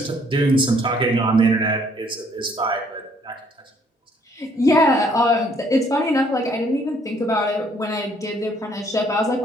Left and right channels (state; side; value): normal; both; correlation 0.64